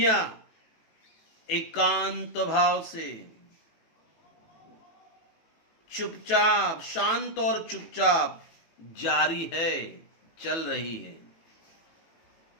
एकांत भाव से चुपचाप, शांत और चुपचाप जारी है, चल रही है।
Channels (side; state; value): right; late; 18 ms